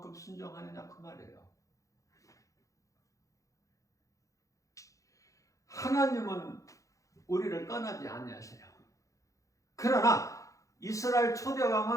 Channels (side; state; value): right; late; 0.16 ms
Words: 순종하느냐 그 말이에요. 하나님은 우리를 떠나지 아니하세요. 그러나 이스라엘